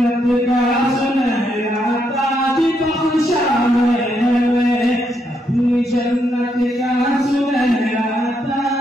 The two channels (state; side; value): normal; both; correlation 0.78